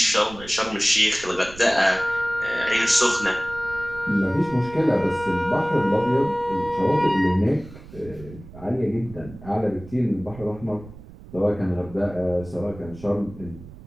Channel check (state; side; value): noise; right; rumble, 17 dB below the sound